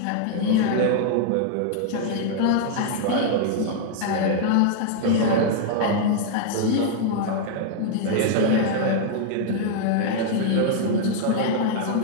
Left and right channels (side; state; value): both; different; correlation -0.01